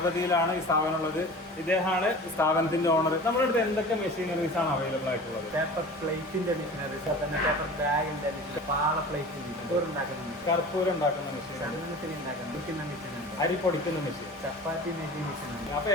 ഈ സ്ഥാപനം ഉള്ളത്. ഇദ്ദേഹമാണ് സ്ഥാപനത്തിന്റെ ഓണർ. നമ്മുടെ അടുത്ത് എന്തൊക്കെ മെഷീനറീസ് ആണ് അവൈലബിൾ ആയിട്ടുള്ളത്? പേപ്പർ പ്ലേറ്റിന്റെ മെഷീനറീസ്, തന്നെ പേപ്പർ ബാഗിന്റെ പാള പ്ലേറ്റിന്റെ കർപ്പൂരം ഉണ്ടാക്കുന്ന മെഷീൻ, ഉണ്ടാക്കുന്ന മെഷീൻ, അരി പൊടിക്കുന്ന മെഷീൻ, ചപ്പാത്തി മേക്കിംഗ് മെഷീൻ. അപ്പൊ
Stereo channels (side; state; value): both; normal; correlation 0.38